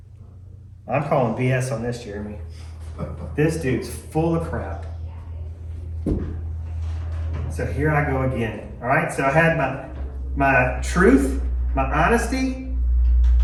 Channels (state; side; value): identical; both; correlation 1.00